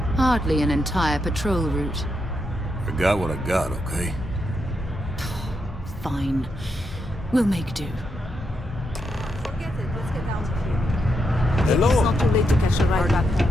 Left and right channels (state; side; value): normal; both; correlation 0.82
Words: Hardly an entire patrol route. I got what I got, okay? Fine. We'll make do. Forget it. Let's get out of here. Hello. It's not too late to catch a ride back